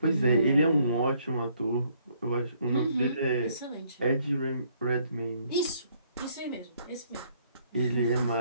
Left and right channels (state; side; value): inverted; both; correlation -0.67